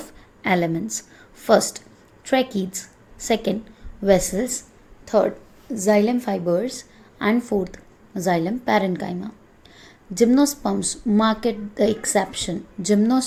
elements. First, tracheids. Second, vessels. Third, xylem fibers. And fourth, xylem parenchyma. Gymnosperms mark the exception.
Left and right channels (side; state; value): both; identical; correlation 1.00